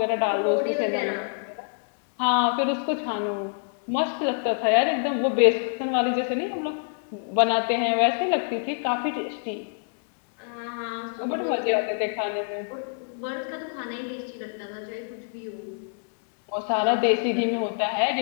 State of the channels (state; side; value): silent; right; digital silence